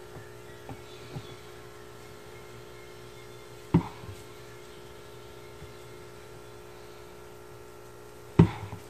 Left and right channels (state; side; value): identical; both; correlation 1.00